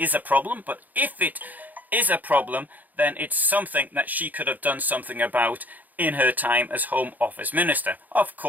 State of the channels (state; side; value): late; left; 0.082 ms